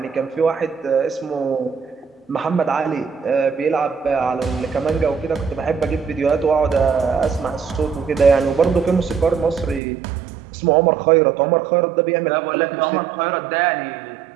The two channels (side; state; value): left; drops out; at 9.8 s